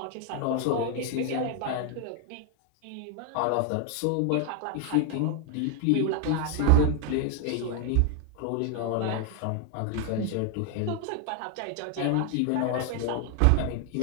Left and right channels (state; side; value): different; both; correlation 0.00